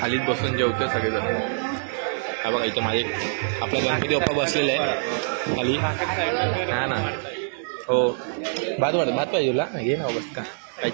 खालीच बसून जेवतो सगळेजण. हा बघा इथे माझे आपला गणपती बाप्पा बसलेले आहे खाली. हा ना. हो भात पाहिजे तुला घे ना बस का काही.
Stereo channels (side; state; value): left; silent; digital silence